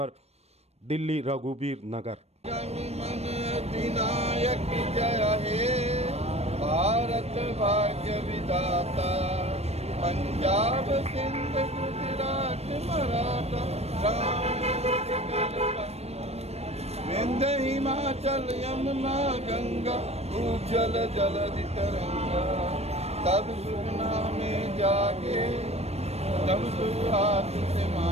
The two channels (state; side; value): late; left; 0.31 ms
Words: दिल्ली, रघुवीर नगर। अधिनायक जय हे भारत भाग्य विधाता, पंजाब सिंध गुजरात मराठा, विंध्य हिमाचल यमुना गंगा, उज्जल जलधि तरंगा, तब सुगना में जागे, तब सुहास से